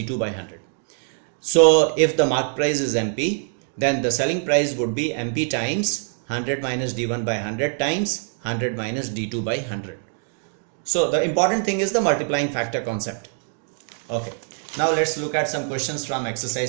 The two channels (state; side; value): silent; left; 63 dB below the other